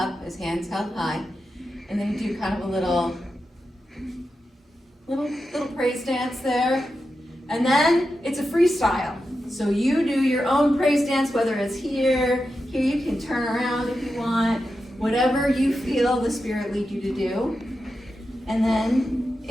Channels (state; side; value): normal; both; correlation 0.89